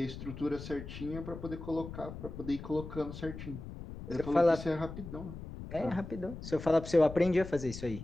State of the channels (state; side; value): noise; left; rumble, 10 dB below the sound